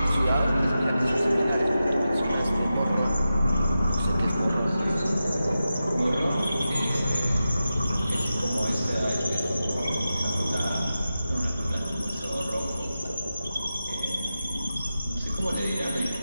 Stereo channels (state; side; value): inverted; both; correlation -0.92